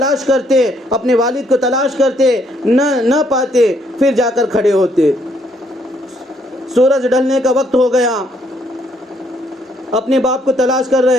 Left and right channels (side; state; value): both; normal; correlation 0.70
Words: کرتے، اپنے والد کو تلاش کرتے، نہ پاتے، پھر جا کر کھڑے ہوتے۔ سورج ڈھلنے کا وقت ہو گیا، اپنے باپ کو تلاش کر